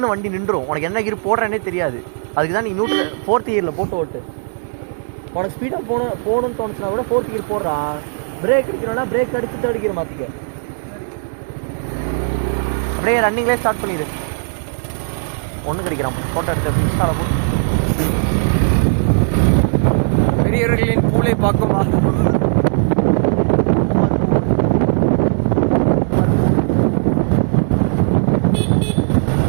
வண்டி நின்றுடும். உனக்கு என்ன கீர் போடுறேன்னே தெரியாது. அதுக்கு தான் நீ 4th கியரில் போட்டு ஓட்டு. உனக்கு ஸ்பீடாக போகணும்னு தோணுச்சுன்னா கூட 4th கியர் போடுறா. பிரேக் அடிக்கணும்னா பிரேக் அடித்து 3rd கியர் மாற்றிக்க. அப்படியே ரன்னிங்லேயே ஸ்டார்ட் பண்ணிடு. ஒன்று கிடைக்கிறான். ஃபோட்டோ எடுத்து இன்ஸ்டாவில் போட்டு. பெரியவர்களின் பூலை பார்க்குமா?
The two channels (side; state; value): left; silent; digital silence